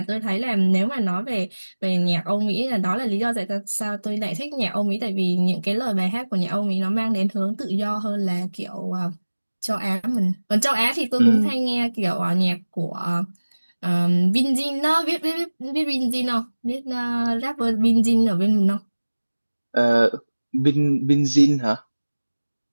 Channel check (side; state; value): both; inverted; correlation -1.00